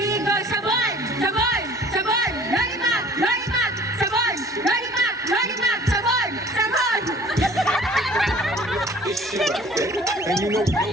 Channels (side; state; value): both; normal; correlation 0.51